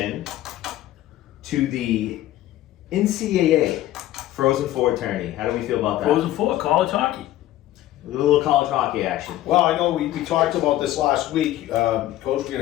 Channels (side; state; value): right; quieter; 14.4 dB